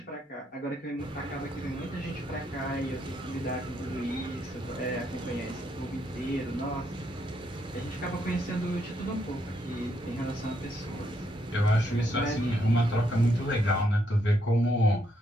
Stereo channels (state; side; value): normal; both; correlation 0.76